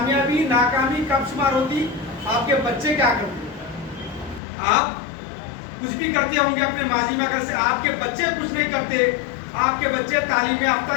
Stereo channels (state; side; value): drops out; right; at 4.4 s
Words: ناکامی کب شمار ہوتی آپ کے بچے کیا کرتے. آپ کچھ بھی کرتے ہوں گے اپنے ماضی میں اگر سے آپ کے بچے کچھ نہیں کرتے آپ کے بچے تعلیم